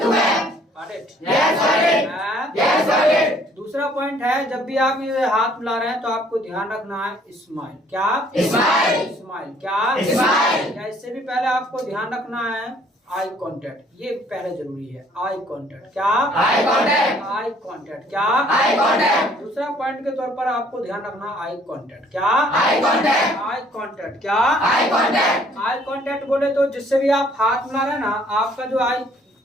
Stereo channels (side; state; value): both; normal; correlation 0.60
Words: to web. Got it? Yes, got it. Yes, got it. दूसरा पॉइंट है जब भी आप ये हाथ मिला रहे हैं तो आपको ध्यान रखना है स्माइल. क्या? स्माइल. स्माइल. क्या? स्माइल. या इससे भी पहले आपको ध्यान रखना है आई कॉन्टेक्ट. ये पहले जरूरी है. Eye contact. क्या? Eye contact. Eye contact. क्या? Eye contact. दूसरा पॉइंट के तौर पर आपको ध्यान रखना आई कॉन्टेक्ट. क्या? Eye contact. Eye contact. क्या? Eye contact. आई कॉन्टेक्ट बोले तो जिससे भी आप हाथ मिला रहे हैं ना, आपका जो आई